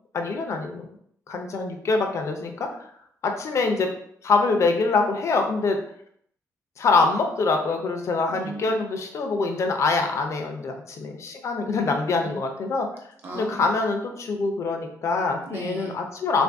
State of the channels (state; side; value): quieter; right; 3.4 dB